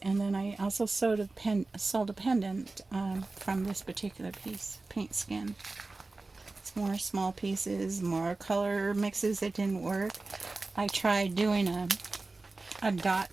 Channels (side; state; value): left; quieter; 3.4 dB